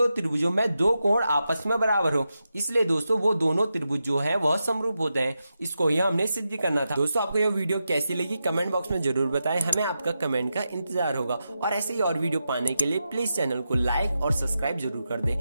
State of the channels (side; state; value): both; inverted; correlation -0.89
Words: में दो कोण आपस में बराबर हो, इसलिए दोस्तों वो दोनों त्रिभुज जो है वह समरूप होते हैं। इसको यह हमने सिद्ध करना था। दोस्तों आपको यह वीडियो कैसी लगी कमेंट बॉक्स में जरूर बताएं, हमें आपका कमेंट का इंतजार होगा। और ऐसे ही और वीडियो पाने के लिए प्लीज चैनल को लाइक और सब्सक्राइब जरूर कर